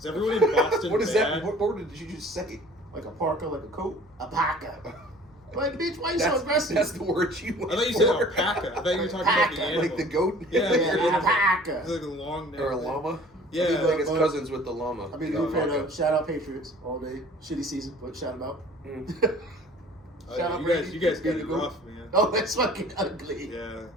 everyone in Boston What is bad? that? What word did you just say? Like a parka, like a coat. A parka. Like, bitch, why you so That's, aggressive? that's the word you I went thought you said for. alpaca. I thought you were talking about the Alpaca. animal. Like the goat? Yeah, Yeah, a parka. It's like a long neck. Or a llama? Yeah. I think it's but- cousins with the llama. I mean, Oh, new fan okay. of shout out Patriots all day. Shitty season, but shout them out. Mm. Oh, Shout yeah, out you Brady. guys got Brady it Goat. rough, man. Oh, that's fucking ugly. Yeah.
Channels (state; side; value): normal; both; correlation 0.49